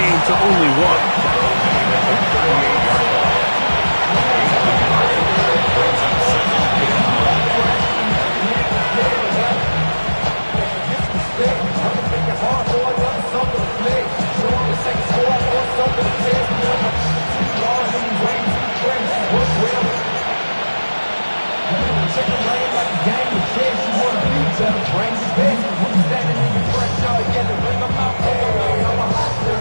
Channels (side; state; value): both; inverted; correlation -1.00